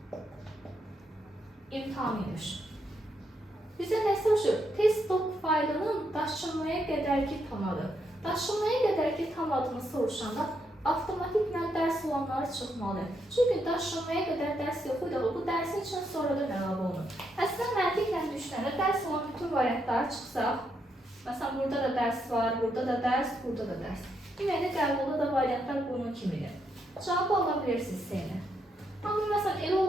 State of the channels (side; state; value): both; normal; correlation 0.79